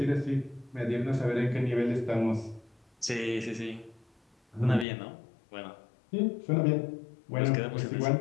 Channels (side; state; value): right; drops out; at 4.9 s